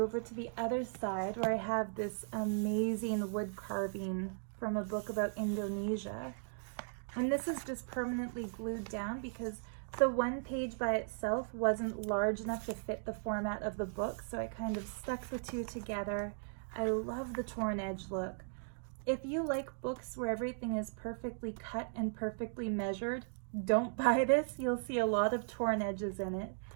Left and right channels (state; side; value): silent; left; digital silence